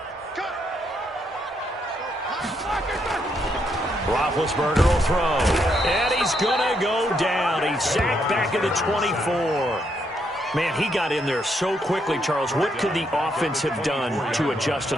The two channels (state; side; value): normal; both; correlation 0.76